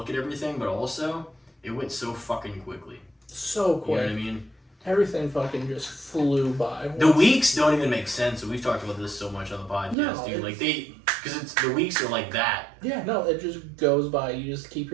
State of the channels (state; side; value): drops out; left; at 10.0 s